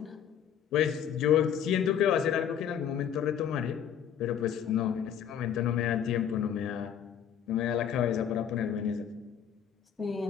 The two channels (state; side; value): quieter; right; 8.8 dB